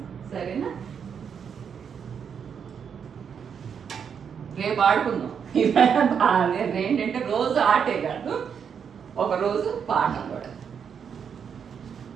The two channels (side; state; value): left; quieter; 7.2 dB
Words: సరేనా? రేపు ఆడుకుందాం. ఏంటంటే రోజు ఆటే కాదు, ఒక రోజు పాఠం కూడా.